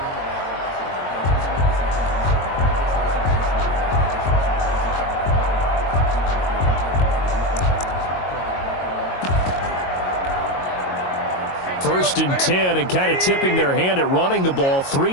First and 10, and kind of tipping their hand at running the ball.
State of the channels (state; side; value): late; right; 22 ms